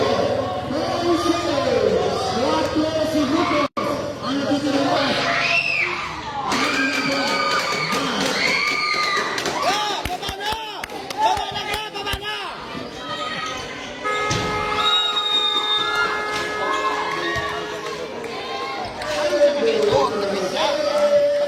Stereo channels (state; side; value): identical; both; correlation 1.00